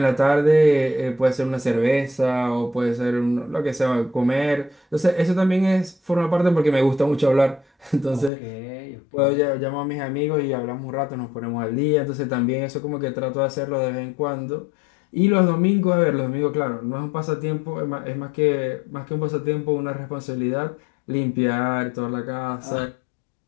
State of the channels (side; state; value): right; drops out; at 8.3 s